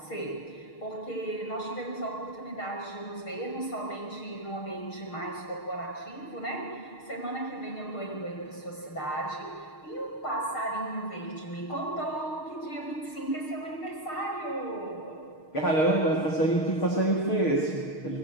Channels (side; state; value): right; late; 6.5 ms